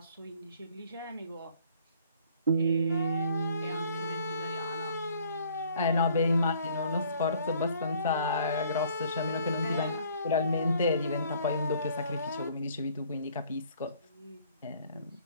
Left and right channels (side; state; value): both; inverted; correlation -0.58